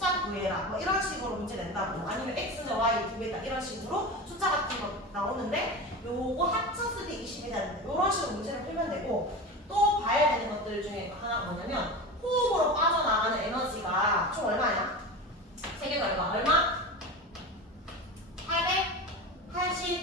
구해라. 뭐 이런 식으로 문제 낸다고. 아니면 x는 y 두 개다. 이런 식으로 숫자 같은 거 나오는데 요거 합쳤을 때 20이 되는데 이런 식으로 문제를 풀면 되고 또 봐야 되는 것들 중에 하나가 뭐냐면 호흡으로 빠져나가는 에너지가 총 얼마야? 세 개가 얼마?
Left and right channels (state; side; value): normal; both; correlation 0.28